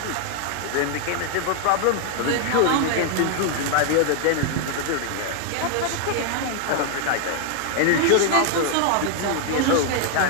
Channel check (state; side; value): different; both; correlation 0.00